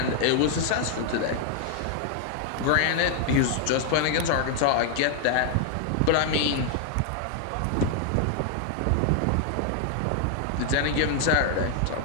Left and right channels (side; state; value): both; different; correlation 0.00